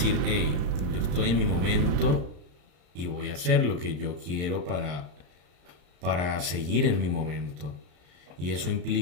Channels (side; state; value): left; late; 34 ms